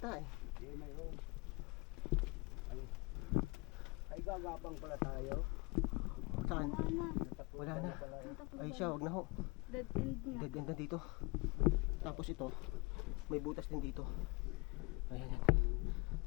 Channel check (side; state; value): right; quieter; 26.4 dB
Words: eh. Hindi, mayroon. Ay, gagabang pala tayo. Saan? Wala na. Natapunan Wala na. pala yun. Ay siya, wag na ho. Dead end na. Dead end na dito. Tapos ito, may butas din dito. Ayan yan.